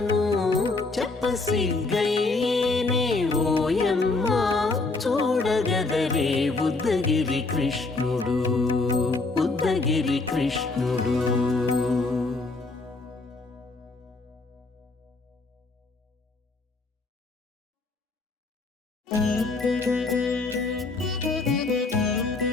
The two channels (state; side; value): quieter; right; 3.6 dB